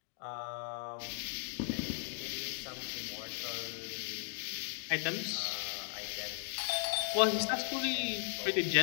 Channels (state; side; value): silent; right; 53 dB below the other